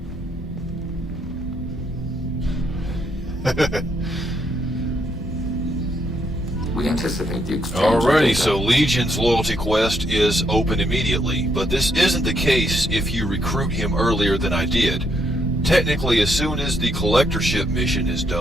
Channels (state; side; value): normal; both; correlation 0.75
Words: We anticipate the exchange. Alrighty, so Legion's loyalty quest is open immediately, but this isn't the case if you recruit him earlier than I did. Technically, as soon as the collectorship mission is